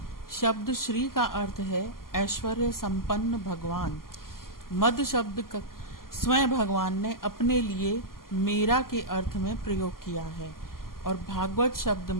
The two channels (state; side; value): late; right; 0.92 ms